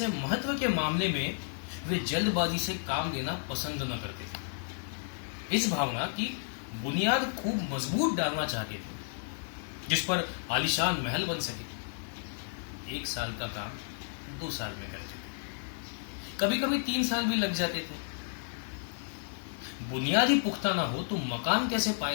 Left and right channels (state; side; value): silent; right; digital silence